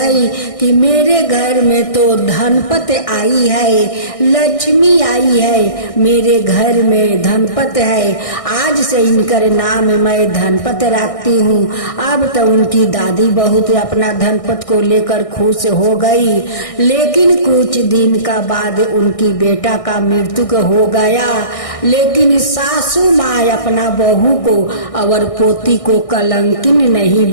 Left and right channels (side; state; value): right; late; 1.6 ms